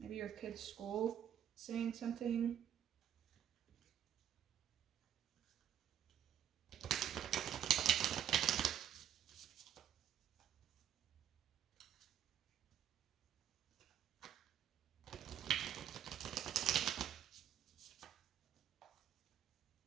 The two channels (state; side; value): quieter; left; 10.0 dB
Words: Maybe your kid's school saying something.